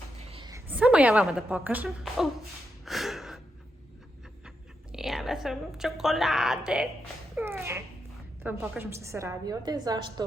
Samo ja vama da pokažem. Jela sam čokolade. Da vam pokažem što se radi ovdje,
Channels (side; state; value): both; normal; correlation 0.84